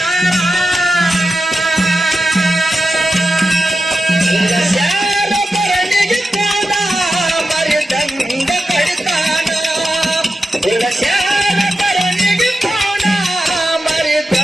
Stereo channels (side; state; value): both; normal; correlation 0.90